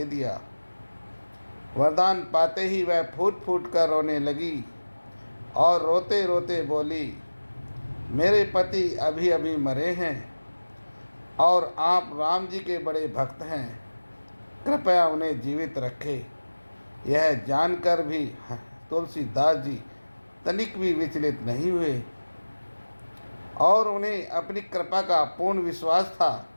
दिया। वरदान पाते ही वह फूट फूट कर रोने लगी और रोते रोते बोली, मेरे पति अभी अभी मरे हैं और आप राम जी के बड़े भक्त हैं, कृपया उन्हें जीवित रखें। यह जानकर भी तुलसीदास जी तनिक भी विचलित नहीं हुए और उन्हें अपनी कृपा का पूर्ण विश्वास था,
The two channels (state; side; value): inverted; both; correlation -1.00